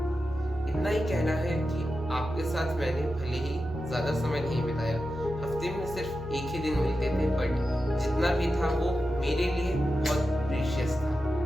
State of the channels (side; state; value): both; normal; correlation 0.91